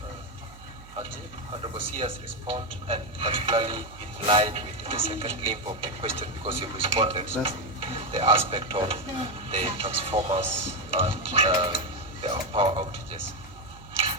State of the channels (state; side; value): noise; right; hum, 20 dB below the sound